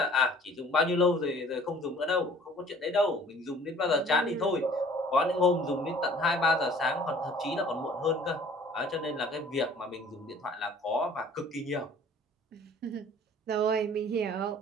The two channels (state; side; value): normal; both; correlation 0.51